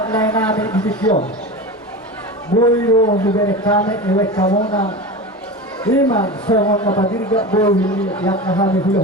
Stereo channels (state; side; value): normal; both; correlation 0.27